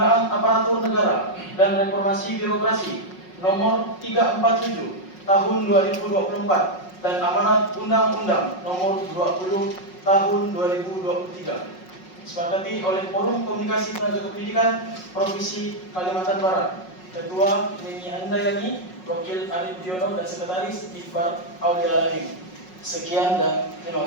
Aparatur Negara dan Reformasi Birokrasi nomor 347 tahun 2024 dan amanat Undang-Undang nomor 20 tahun 2023. Disepakati oleh Forum Komunikasi Tenaga Kependidikan Provinsi Kalimantan Barat. Ketua Neni Handayani, Wakil Arif Diono, dan Sekretaris Iqbal Aulialalim. Sekian dan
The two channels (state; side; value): late; right; 5.5 ms